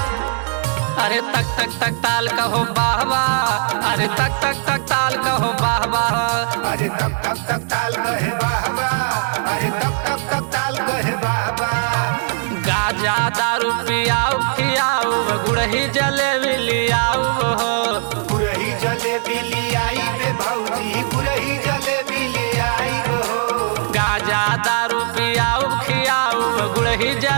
अरे तक तक तक ताल कहो वाह वाह, अरे तक तक तक ताल कहो वाह वाह, अरे तक तक तक ताल कहे वाह वाह, अरे तक तक तक ताल कहे वाह वाह। गाजा दारू पियाऊ खियाऊ, गुड़ही जलेबी लियाऊ हो, गुड़ही जलेबी लियाई बे भौजी, गुड़ही जलेबी लियाई हो। गाजा दारू पियाऊ खियाऊ, गुड़ही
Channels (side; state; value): left; silent; 66 dB below the other